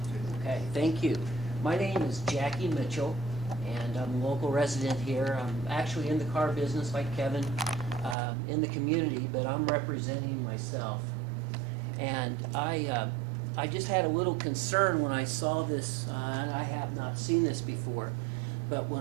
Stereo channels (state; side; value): drops out; left; at 8.2 s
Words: Okay, thank you. My name is Jackie Mitchell, and I'm a local resident here. I'm actually in the car business like Kevin, in the community, but I'm representing myself. And I just had a little concern when I saw this, and I have not seen this before, but